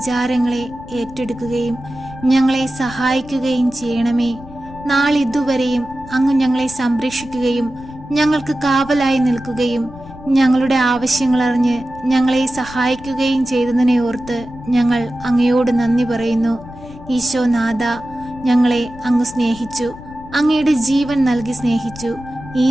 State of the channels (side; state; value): left; noise; rumble, 17 dB below the sound